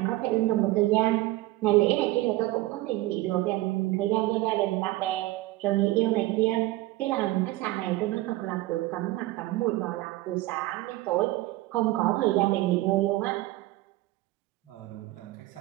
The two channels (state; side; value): quieter; left; 18.1 dB